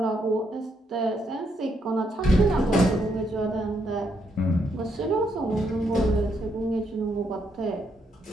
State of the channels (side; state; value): both; normal; correlation 0.76